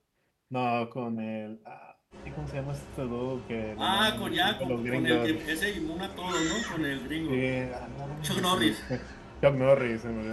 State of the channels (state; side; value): identical; both; correlation 1.00